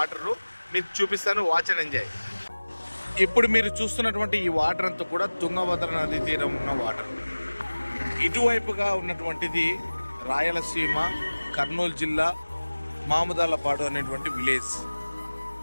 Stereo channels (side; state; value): both; inverted; correlation -1.00